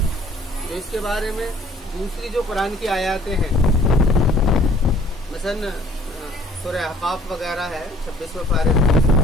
تو اس کے بارے میں دوسری جو قرآن کی آیاتیں ہیں، مثلا سورہ احقاف وغیرہ ہے 26 پارے،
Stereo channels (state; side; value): normal; both; correlation 0.57